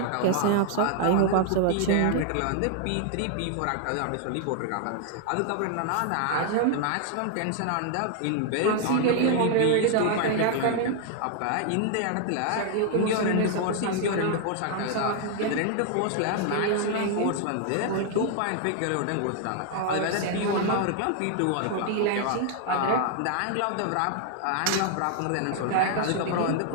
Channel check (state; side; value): different; both; correlation 0.00